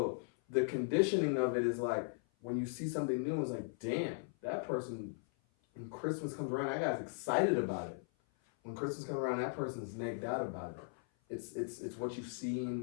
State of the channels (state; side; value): silent; right; 52 dB below the other